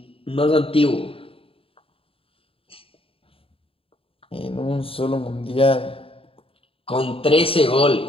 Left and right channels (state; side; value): late; right; 0.27 ms